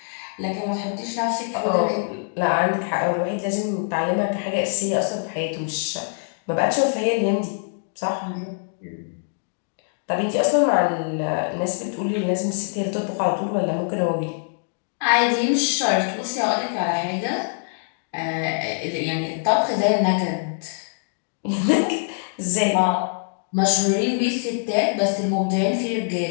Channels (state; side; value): silent; right; digital silence